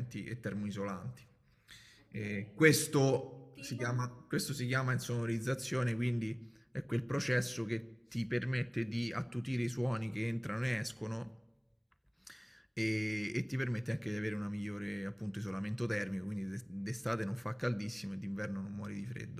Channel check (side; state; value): both; identical; correlation 1.00